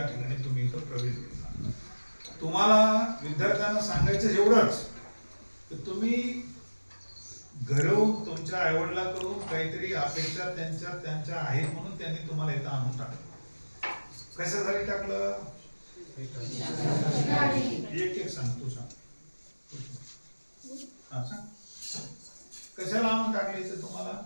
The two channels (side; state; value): both; inverted; correlation -1.00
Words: ठिकाणी तुम्ही इथं प्रवेश घेतला. तुम्हाला विद्यार्थ्यांना सांगायचं एवढंच तर तुम्ही घरून तुमच्या आईवडिलांकडून काहीतरी अपेक्षा त्यांच्या आहेत म्हणून त्यांनी तुम्हाला इथं आणून टाकलं. कशासाठी टाकलं? एक एक सांग, तू सांग. हा, सांग. कशाला आणून टाकले इथं तुम्हाला?